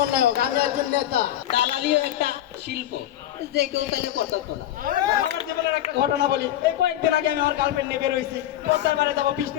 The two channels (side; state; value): right; quieter; 12.6 dB